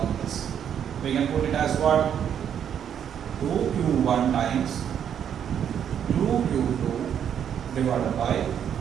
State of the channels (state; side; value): quieter; left; 8.8 dB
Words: this. We can put it as what? 2Q1 times 2Q2 divided by